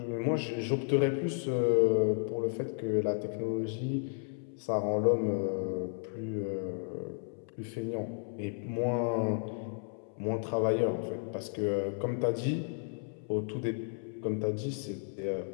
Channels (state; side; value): silent; right; 56 dB below the other